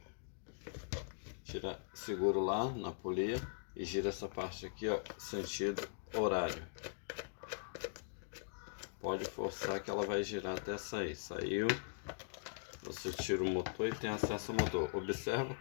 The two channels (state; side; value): silent; right; digital silence